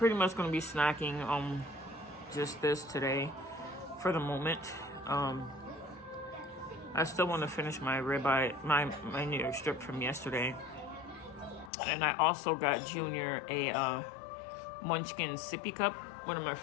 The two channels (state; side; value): drops out; right; at 11.7 s